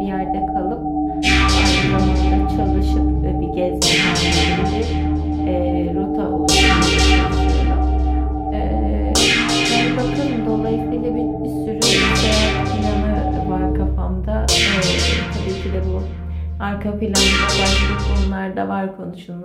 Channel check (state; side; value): identical; both; correlation 1.00